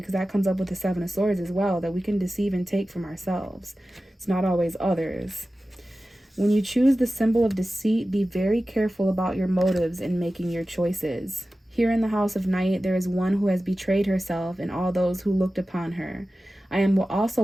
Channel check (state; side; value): normal; both; correlation 0.95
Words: that comes up with the Seven of Swords as well, that we can deceive and take from ourselves. It's not always others. When you choose the symbol of deceit, be very careful about your motives in making your choices. Here in the House of Night, there is one who has betrayed herself and all those who looked upon her. I am also